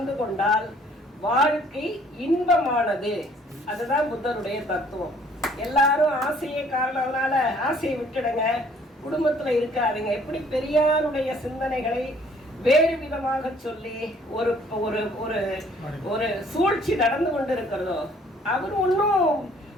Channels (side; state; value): both; normal; correlation 0.59